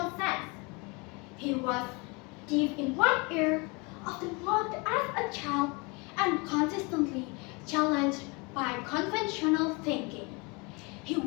sense. He was deaf in one ear, often mocked as a child, and consistently challenged by conventional thinking.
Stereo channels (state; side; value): quieter; right; 28.9 dB